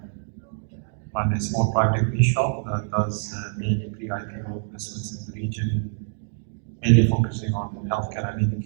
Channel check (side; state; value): left; silent; digital silence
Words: a small private equity shop that does mainly pre-IPO investments in the region, mainly focusing on healthcare and